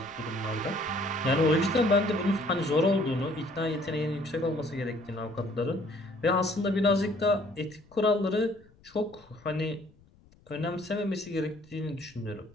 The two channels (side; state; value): left; noise; rumble, 28 dB below the sound